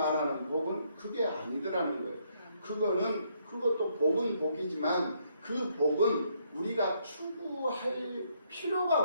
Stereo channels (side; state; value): both; inverted; correlation -0.72